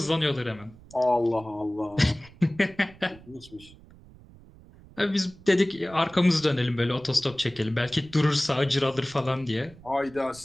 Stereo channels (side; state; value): right; noise; rumble, 22 dB below the sound